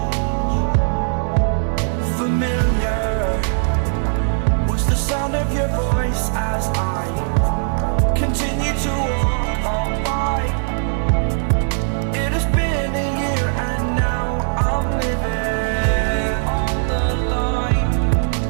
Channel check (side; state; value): left; silent; digital silence